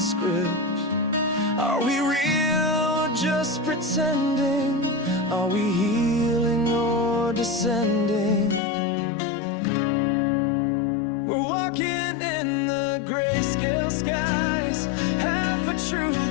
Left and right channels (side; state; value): right; drops out; at 8.6 s